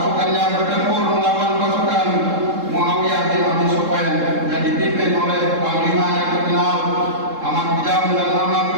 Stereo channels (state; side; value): late; left; 3.7 ms